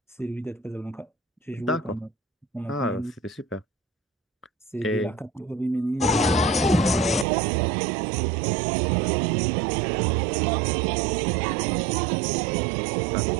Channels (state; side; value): drops out; left; at 7.2 s